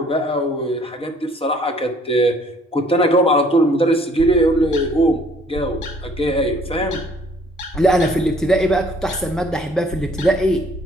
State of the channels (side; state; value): both; normal; correlation 0.59